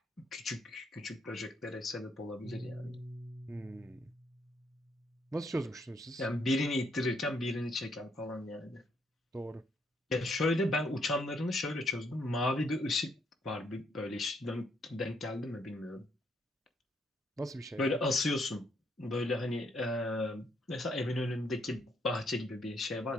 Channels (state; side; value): normal; both; correlation 0.72